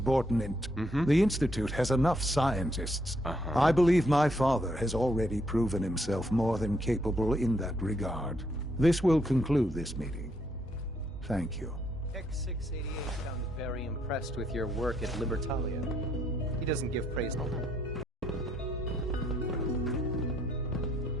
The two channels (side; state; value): both; normal; correlation 0.73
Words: the Institute has enough scientists. I believe my father has already proven himself more than capable in that regard. This will conclude this meeting. Thank you. X688 sounds very impressed with your work at Libertalia. He doesn't give praise.